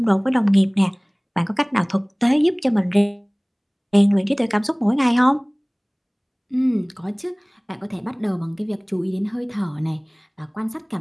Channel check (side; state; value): both; identical; correlation 1.00